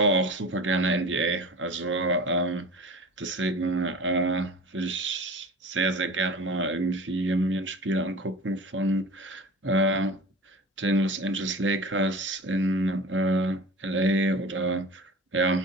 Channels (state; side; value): normal; both; correlation 0.37